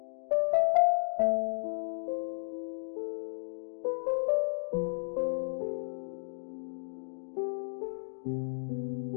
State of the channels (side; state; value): right; silent; digital silence